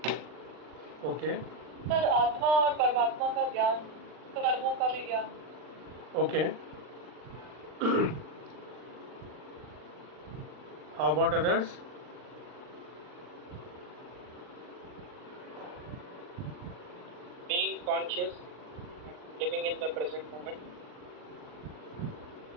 ओके सर आत्मा और परमात्मा का ज्ञान, कर्मों का भी ज्ञान। Okay how about others? Being conscious, living in the present moment.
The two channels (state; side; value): late; left; 39 ms